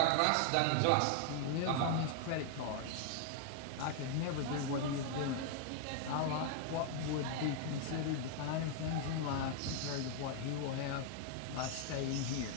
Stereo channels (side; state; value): both; different; correlation 0.00